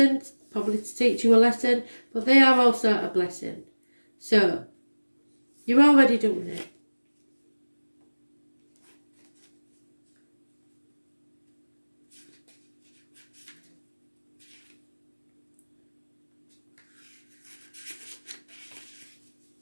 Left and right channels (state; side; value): inverted; both; correlation -1.00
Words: probably to teach you a lesson, but they are also a blessing. So you're already doing it.